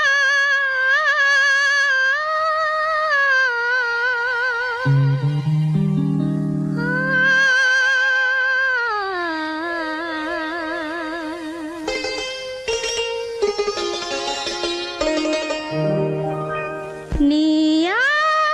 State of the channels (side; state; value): both; identical; correlation 1.00